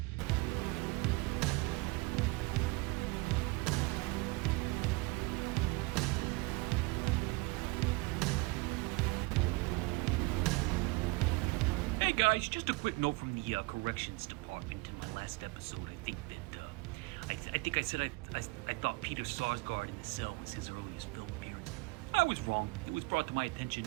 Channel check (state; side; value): quieter; left; 25.0 dB